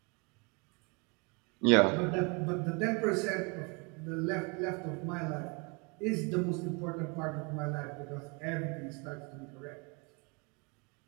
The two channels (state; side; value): quieter; left; 31.0 dB